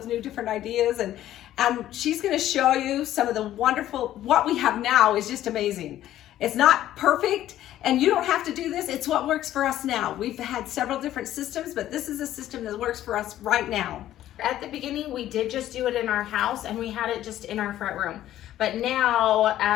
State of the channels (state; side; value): quieter; right; 12.9 dB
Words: new different ideas, and she's going to show you some of the wonderful, what we have now is just amazing. It's not perfect, and you don't have to do this. It's what works for us now. We've had several different systems, but this is a system that works for us right now. At the beginning, we did just do it in our house, and we had it just in our front room. But now,